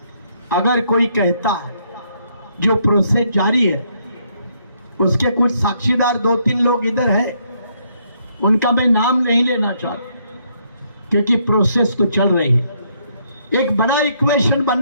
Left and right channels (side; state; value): both; inverted; correlation -0.72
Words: अगर कोई कहता है जो प्रोसेस जारी है, उसके कुछ साक्षीदार 2-3 लोग इधर है, उनका मैं नाम नहीं लेना चाहता क्योंकि प्रोसेस तो चल रही है। एक बड़ा इक्वेशन